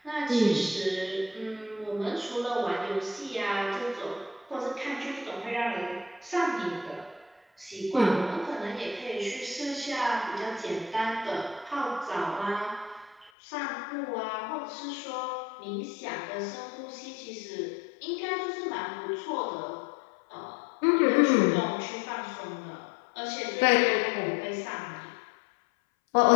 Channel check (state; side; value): drops out; right; at 13.3 s